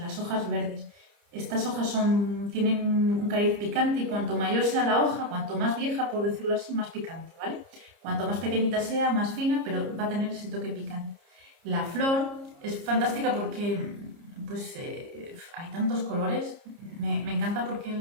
hojas verdes. Estas hojas tienen un cariz picante y cuanto mayor sea la hoja, cuanto más vieja, por decirlo así, más picante, ¿vale? Cuanto más pequeñita sea, más fina, pero va a tener ese toque picante. La flor es fantástica porque pues, hay tantos colores. Me encanta porque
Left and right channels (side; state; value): left; late; 30 ms